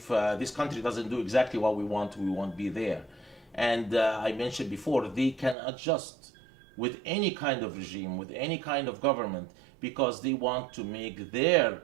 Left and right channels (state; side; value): drops out; left; at 5.6 s